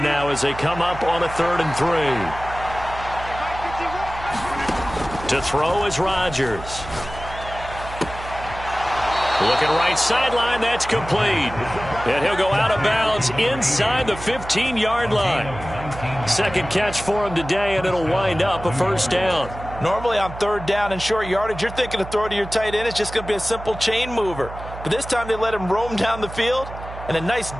now as they come up on a 3rd and 3. To throw is Rodgers. Looking right sideline, that's complete. And he'll go out of bounds inside the 15-yard line. Second catch for him today, and it'll wind up a first down. Normally on 3rd down and short yardage, you're thinking to throw to your tight end. It's just going to be a simple chain mover. But this time they let him roam down the field, and a nice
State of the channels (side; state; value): right; noise; hum, 12 dB below the sound